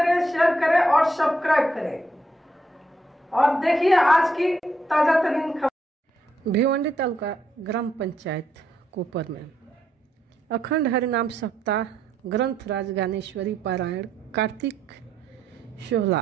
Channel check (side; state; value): both; normal; correlation 0.76